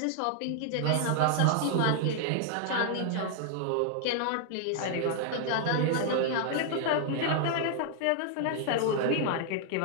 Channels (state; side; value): different; both; correlation 0.00